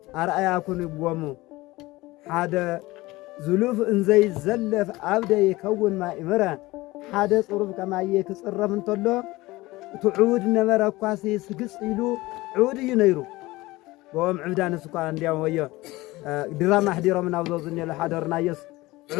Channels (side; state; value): right; quieter; 19.8 dB